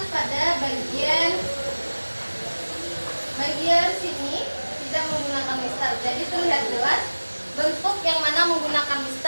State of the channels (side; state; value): both; inverted; correlation -1.00